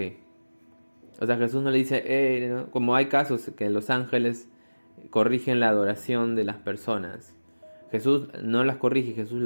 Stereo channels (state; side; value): inverted; both; correlation -1.00